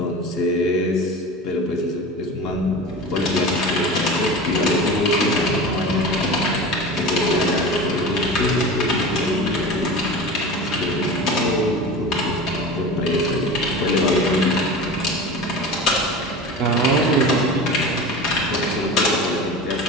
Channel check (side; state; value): both; normal; correlation 0.32